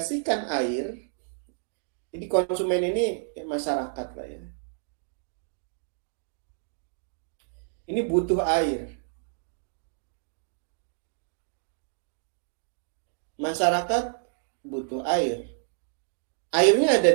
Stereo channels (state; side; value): silent; left; digital silence